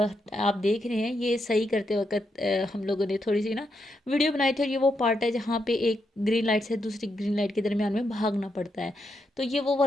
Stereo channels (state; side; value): normal; both; correlation 0.82